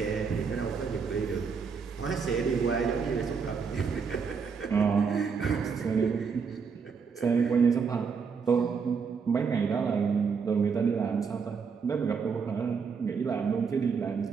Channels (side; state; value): left; quieter; 5.7 dB